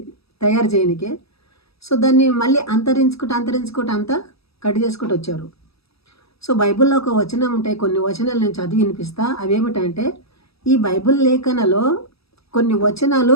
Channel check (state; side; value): late; right; 0.77 ms